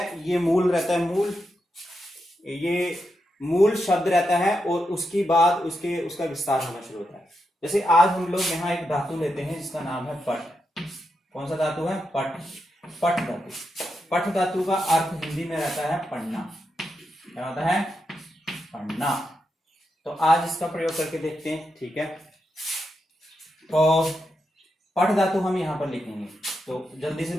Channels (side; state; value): both; normal; correlation 0.85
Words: ये मूल रहता है, मूल, ये मूल शब्द रहता है और उसकी बाद उसका विस्तार होना शुरू होता है। जैसे आज हम लोग यहाँ एक धातु लेते हैं जिसका नाम है पट। कौन सा धातु है? पट। पट धातु। पट धातु का अर्थ हिंदी में रहता है पढ़ना। क्या होता है? पढ़ना। तो आज इसका प्रयोग करके देखते हैं। ठीक है, तो पठ धातु हम यहां पर लिखेंगे, तो जल्दी से